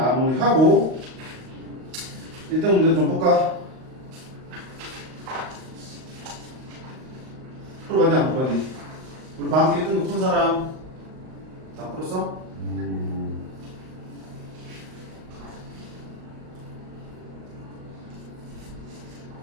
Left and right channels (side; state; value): left; late; 38 ms